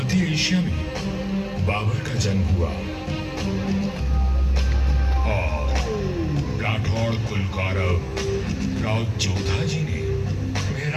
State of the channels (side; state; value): both; identical; correlation 1.00